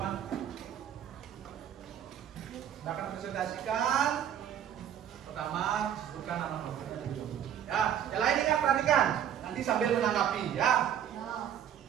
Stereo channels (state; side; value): quieter; left; 9.7 dB